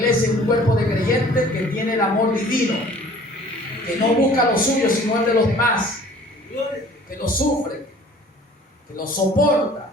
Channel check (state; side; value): normal; both; correlation 0.50